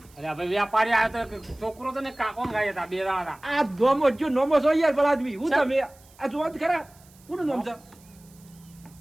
અરે ભાઈ વ્યાપારી આવ્યો તો એક છોકરો હતો ને કાકો હંગાઈ હતા, બે જણા હતા. આ ધોમો જો નોમો છો યાર ભલા આદમી હું તમે આ જોવા જ ખરા કોનું નામ છે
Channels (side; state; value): right; noise; hiss, 27 dB below the sound